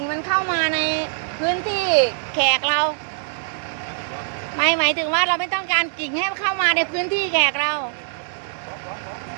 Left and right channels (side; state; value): left; silent; 64 dB below the other